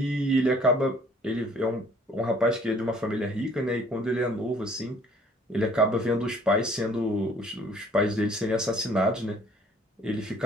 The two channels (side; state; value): both; normal; correlation 0.56